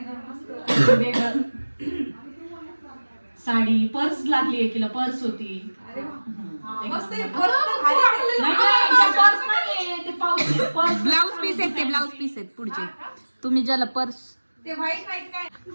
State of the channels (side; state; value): both; inverted; correlation -1.00